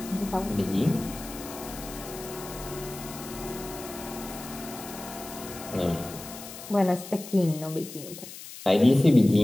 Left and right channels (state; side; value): noise; left; hiss, 13 dB below the sound